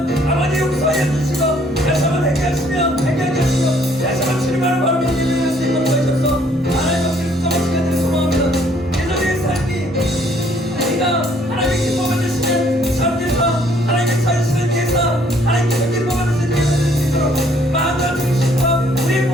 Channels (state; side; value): normal; both; correlation 0.63